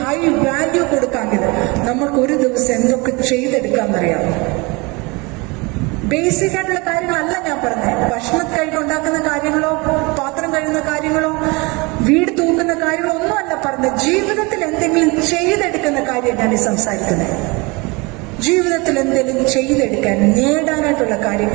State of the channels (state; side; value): quieter; left; 26.6 dB